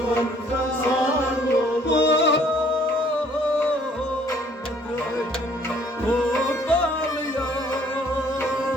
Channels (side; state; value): both; normal; correlation 0.60